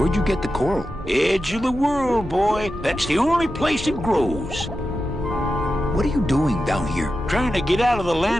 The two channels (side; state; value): both; normal; correlation 0.91